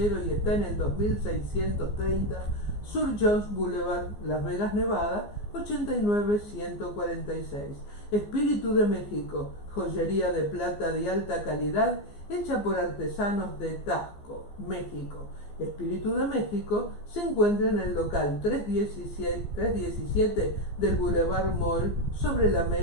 y está en el 2630 Sur Jones Boulevard, Las Vegas, Nevada, 89146. Espíritu de México, joyería de plata de alta calidad hecha por artesanos de Taxco, México. Espíritu de México se encuentra en el local 317 del Boulevard Mall sobre la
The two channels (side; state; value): right; late; 14 ms